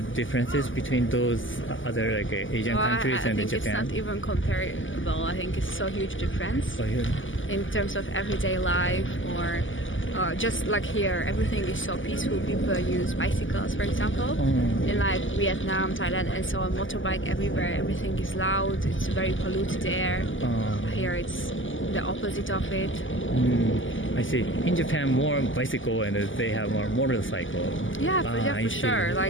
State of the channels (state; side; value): late; right; 0.57 ms